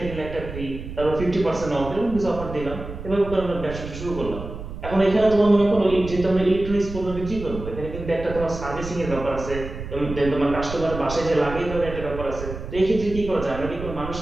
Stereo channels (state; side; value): noise; right; rumble, 9 dB below the sound